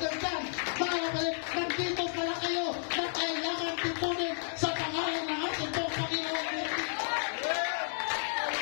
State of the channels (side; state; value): right; silent; digital silence